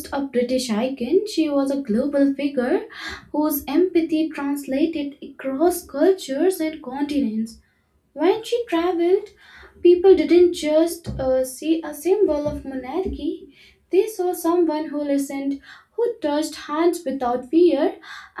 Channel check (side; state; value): both; identical; correlation 1.00